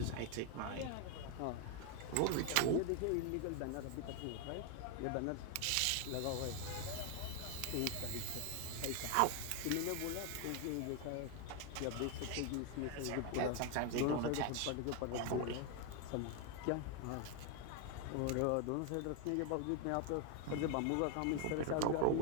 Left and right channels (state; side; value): different; both; correlation 0.01